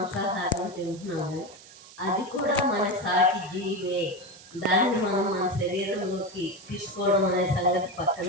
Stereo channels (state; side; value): noise; right; hiss, 20 dB below the sound